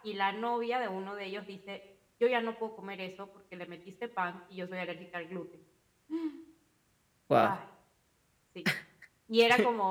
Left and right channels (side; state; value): both; identical; correlation 1.00